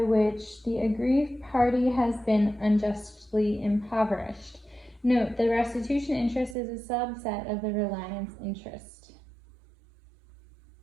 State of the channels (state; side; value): drops out; left; at 6.6 s